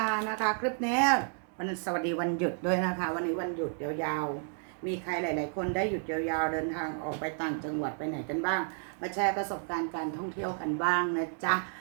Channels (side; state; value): left; silent; 57 dB below the other